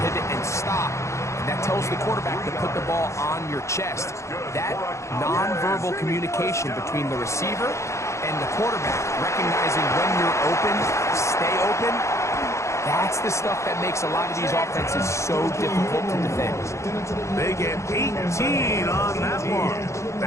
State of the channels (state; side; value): late; right; 0.14 ms